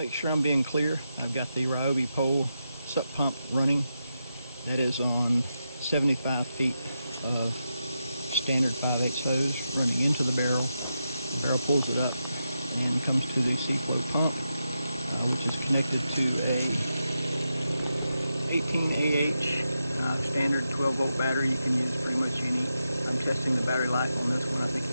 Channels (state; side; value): inverted; both; correlation -0.87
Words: sure I'm being clear, I've got the Ryobi pole sup pump running. That is on 75 feet of standard 5/8 hose running into the barrel. The barrel pulls it up and comes to the SeaFlo pump, which is connected to a 18AH standard 12-volt battery. You can use pretty much any. I'm testing the battery life on this one. I think